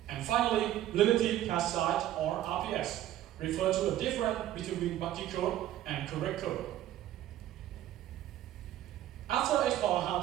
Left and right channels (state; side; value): quieter; left; 12.9 dB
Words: And finally, relative pass size or RPS refers to the difference between buggy code and correct code. After exploring how